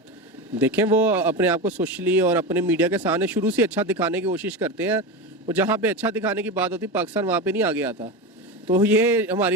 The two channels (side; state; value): both; normal; correlation 0.21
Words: देखें, वो अपने आप को सोशली और अपने मीडिया के सामने शुरू से अच्छा दिखाने की कोशिश करते हैं। और जहाँ पे अच्छा दिखाने की बात होती, पाकिस्तान वहाँ पे नहीं आगे आता। तो ये